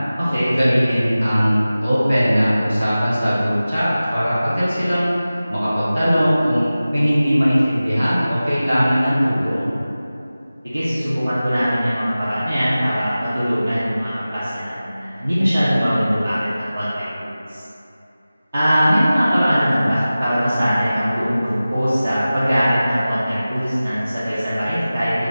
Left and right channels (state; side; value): inverted; both; correlation -0.96